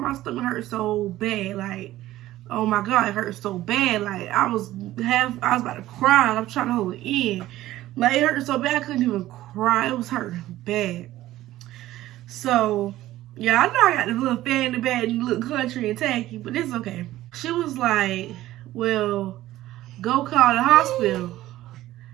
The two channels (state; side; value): quieter; left; 15.2 dB